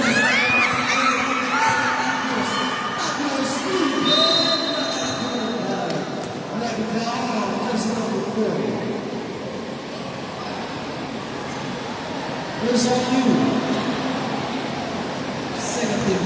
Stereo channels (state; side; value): identical; both; correlation 1.00